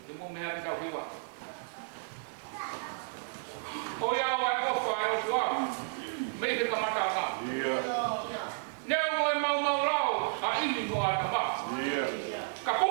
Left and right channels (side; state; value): left; silent; digital silence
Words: Te mo meha ki tau hiwa. O ia o ai kofa ai o tua. Mei te kamata nga. Nea o e mau rao. A imi mo a tamba. Ka